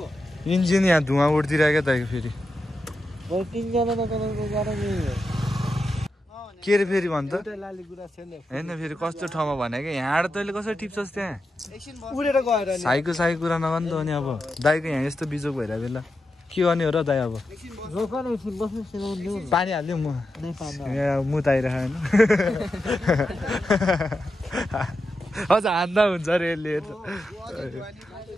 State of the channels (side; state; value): both; normal; correlation 0.88